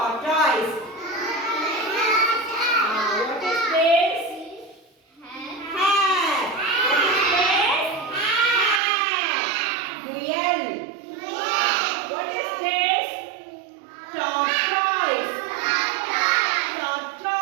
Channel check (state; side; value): drops out; left; at 8.8 s